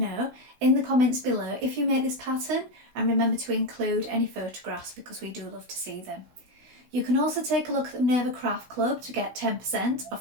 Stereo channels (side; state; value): left; late; 16 ms